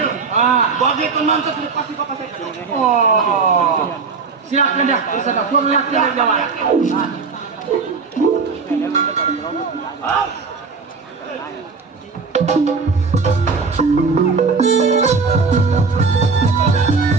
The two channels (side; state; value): left; quieter; 4.8 dB